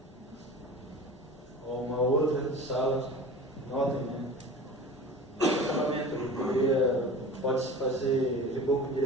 Ou uma outra sala, notem, né? Acabamento, pode-se fazer reboco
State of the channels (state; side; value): normal; both; correlation 0.37